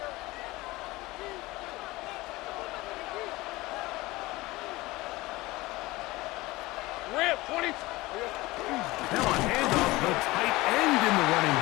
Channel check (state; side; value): quieter; right; 20.3 dB